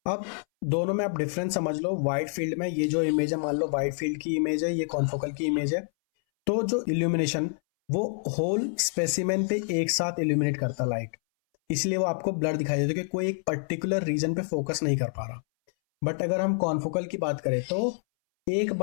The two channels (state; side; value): silent; right; 60 dB below the other